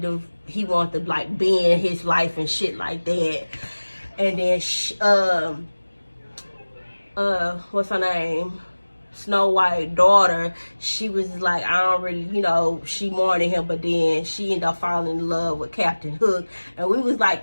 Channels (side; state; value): both; inverted; correlation -1.00